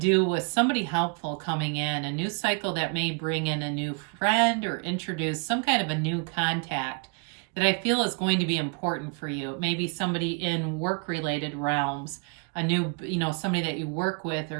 with somebody helpful coming in, a new cycle that may bring in a new friend or introduce some kind of a new contact that I feel is going to be important for you. Maybe somebody in work-related realms, a new, somebody that you work with,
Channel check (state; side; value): quieter; left; 36.7 dB